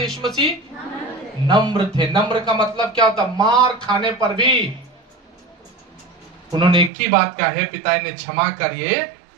यीशु मसीह? नम्र थे। नम्र का मतलब क्या होता? मार खाने पर भी उन्होंने एक ही बात कहा है, पिता इन्हें क्षमा कर, ये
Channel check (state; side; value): drops out; left; at 6.9 s